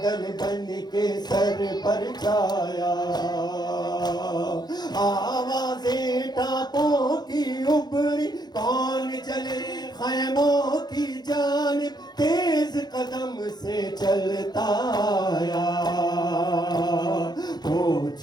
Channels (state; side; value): late; right; 0.20 ms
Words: بن کے سر پر چھایا آوازیں ٹاپوں کی ابری کون چلے خیموں کی جانب تیز قدم سے چلتا آیا